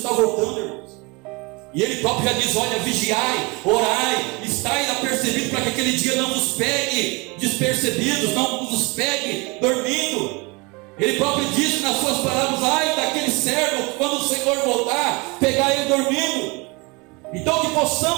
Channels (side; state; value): left; quieter; 27.3 dB